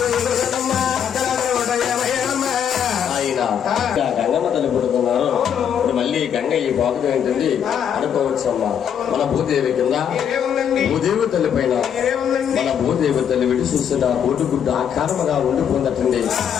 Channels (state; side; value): quieter; right; 8.5 dB